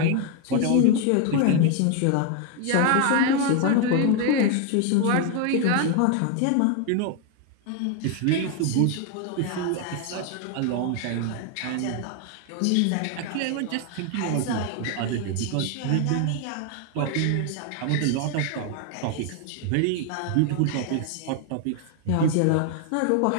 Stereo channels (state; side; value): different; both; correlation 0.01